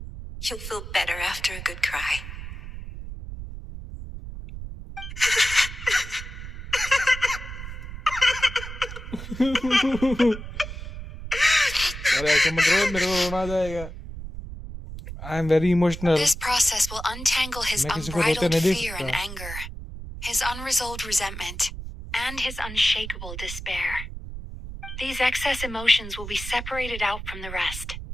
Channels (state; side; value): noise; right; rumble, 10 dB below the sound